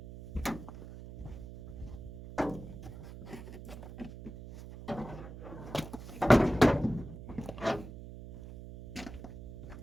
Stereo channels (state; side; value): noise; right; hum, 12 dB below the sound